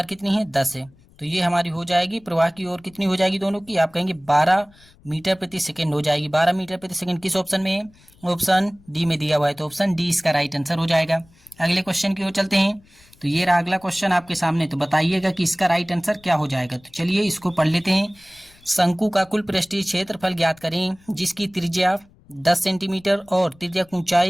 कितनी है, 10 है। तो ये हमारी हो जाएगी प्रवाह की ओर कितनी हो जाएगी दोनों की, आप कहेंगे 12 मीटर प्रति सेकंड हो जाएगी। 12 मीटर प्रति सेकंड किस ऑप्शन में है, ऑप्शन डी में दिया हुआ है, तो ऑप्शन डी इसका राइट आंसर हो जाएगा। अगले क्वेश्चन की ओर चलते हैं। तो ये रहा अगला क्वेश्चन आपके सामने। तो बताइएगा कि इसका राइट आंसर क्या हो जाएगा। तो चलिए इसको पढ़ लेते हैं। शंकु का कुल पृष्ठीय क्षेत्रफल ज्ञात करें जिसकी त्रिज्या 10 सेंटीमीटर और त्रिज्या की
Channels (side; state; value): left; noise; rumble, 28 dB below the sound